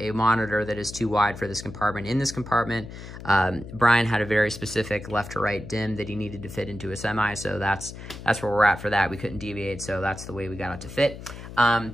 monitor that is too wide for this compartment. In this compartment, Brian had a very specific left to right dim that he needed to fit into a semi, so that's where we're at for that. We couldn't deviate, so that's the way we got it to fit.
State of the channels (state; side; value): noise; left; hum, 12 dB below the sound